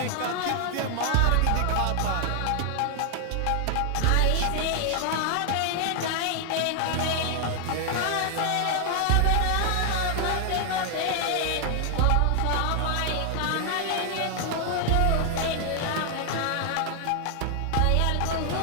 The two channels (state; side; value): different; both; correlation 0.00